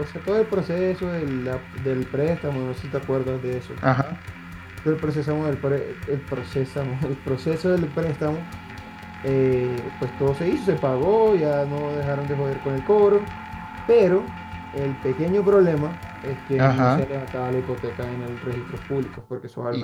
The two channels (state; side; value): identical; both; correlation 1.00